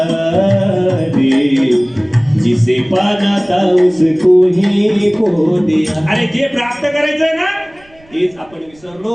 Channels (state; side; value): noise; right; rumble, 29 dB below the sound